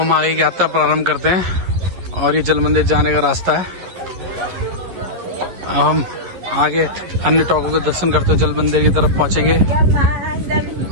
आगे की यात्रा प्रारंभ करते हैं और ये जल मंदिर जाने का रास्ता है। अब हम आगे अन्य टॉकों के दर्शन करते हुए जल मंदिर की तरफ पहुंचेंगे।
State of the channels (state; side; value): late; left; 11 ms